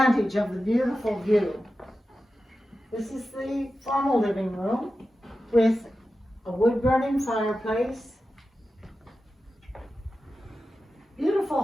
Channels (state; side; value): normal; both; correlation 0.92